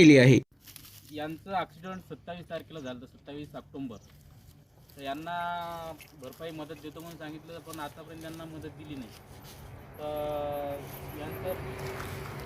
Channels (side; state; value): both; identical; correlation 1.00